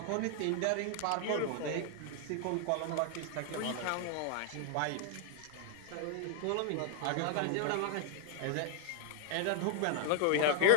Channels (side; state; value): both; different; correlation 0.00